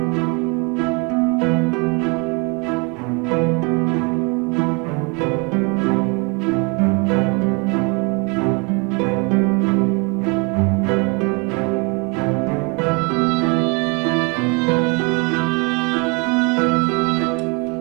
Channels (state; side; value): quieter; left; 31.5 dB